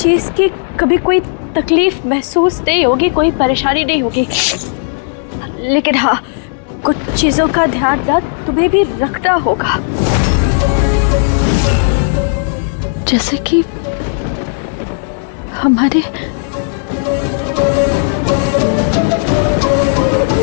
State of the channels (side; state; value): right; silent; digital silence